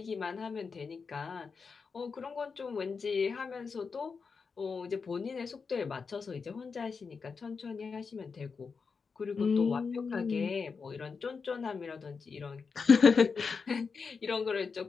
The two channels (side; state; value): right; quieter; 5.2 dB